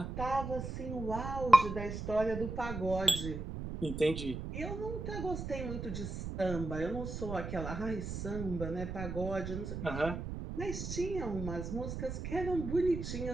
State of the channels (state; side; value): noise; right; rumble, 6 dB below the sound